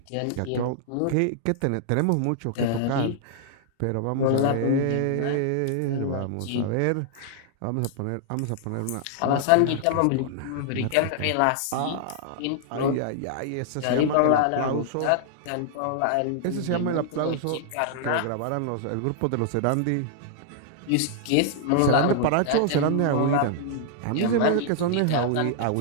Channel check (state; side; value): different; both; correlation -0.01